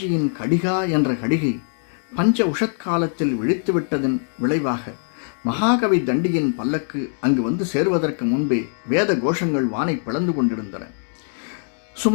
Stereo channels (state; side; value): silent; right; 64 dB below the other